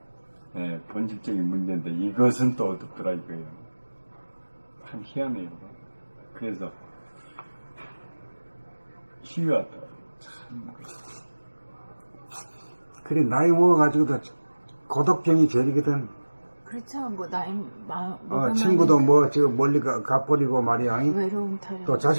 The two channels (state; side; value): inverted; both; correlation -1.00